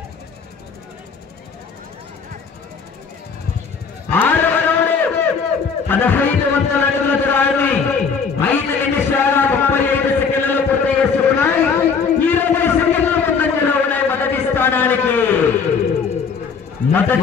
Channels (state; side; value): quieter; right; 5.7 dB